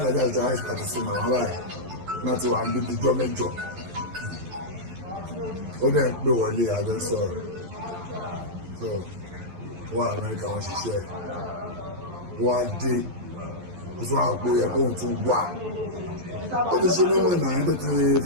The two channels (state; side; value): late; left; 11 ms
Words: ìjọba ìpàdé sí màmá báyìí náà ti wà níbi ìjọ mẹ́jọ ó dẹ̀ ń pè wọlé àjọ sọ̀rọ̀ so wọ́n Amẹ́ríkà wọ́n ṣiṣẹ́ wọ́n á dé ó tún àwọn òpó yẹ kóhun tún wà ó ti ṣe mímọ̀ náà tó ti